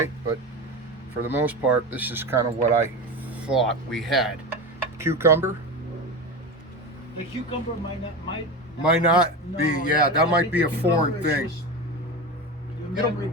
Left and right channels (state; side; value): normal; both; correlation 0.24